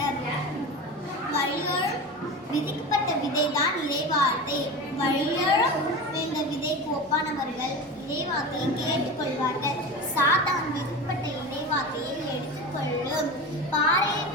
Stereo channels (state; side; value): normal; both; correlation 0.28